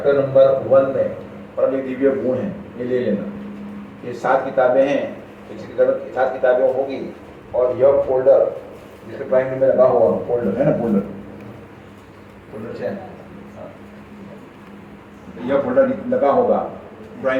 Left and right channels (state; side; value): identical; both; correlation 1.00